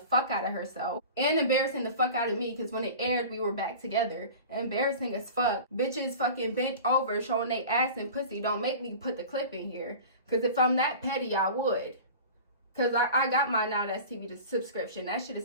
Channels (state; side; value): inverted; both; correlation -0.37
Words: out of herself. And embarrassing the fuck out of me, because when it aired, we were back together. Embarrassing as fuck. Bitches fucking bent over showing they ass and pussy. Don't make me put the clip in here. Because if I'm that petty, I would. Because I got my Now That's TV subscription. That shit is